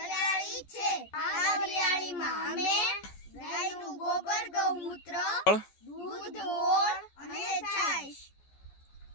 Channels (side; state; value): right; late; 14 ms